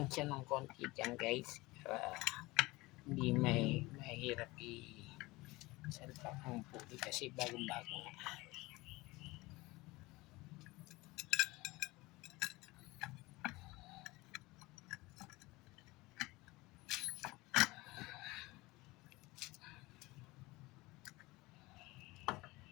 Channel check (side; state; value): right; quieter; 21.6 dB